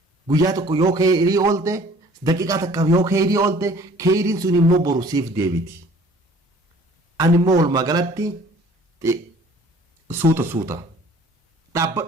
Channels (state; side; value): normal; both; correlation 0.52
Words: guyyaa tokko yoo khayrii oolte daqiiqaa takkaaf yoo khayrii oolte khayriin sun immoo boru siif deebiti ani immoo walumaa galatti suuta